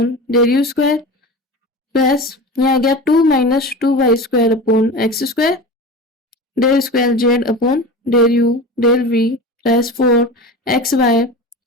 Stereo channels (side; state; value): both; normal; correlation 0.30